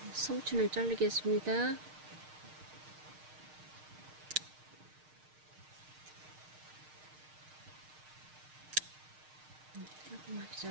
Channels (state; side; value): late; left; 6.5 ms